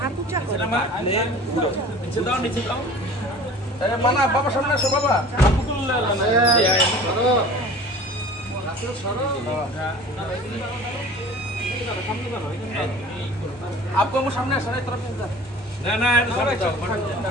ऊंचा करो नीचे दाओ अरे माना बाबा सामने আসো बाबा आपको वो सामने आना तरफ ना ना सबाई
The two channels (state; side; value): normal; both; correlation 0.43